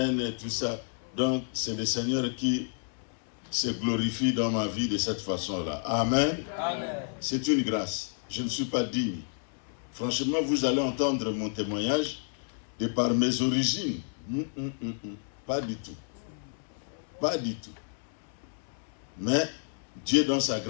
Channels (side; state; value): right; silent; 58 dB below the other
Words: et tout ça. Donc, c'est le Seigneur qui se glorifie dans ma vie de cette façon-là. Amen. Amen. C'est une grâce. Je ne suis pas digne. Franchement, vous allez entendre mon témoignage de par mes origines. Pas du tout. Pas du tout. Mais Dieu, dans sa